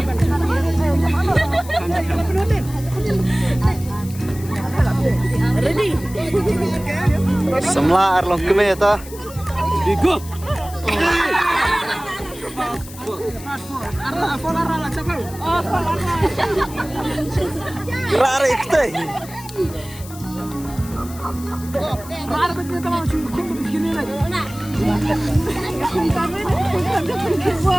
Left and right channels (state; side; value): noise; left; hiss, 17 dB below the sound